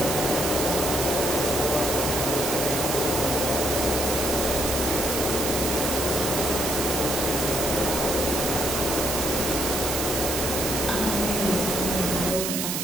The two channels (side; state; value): right; noise; hiss, 1 dB below the sound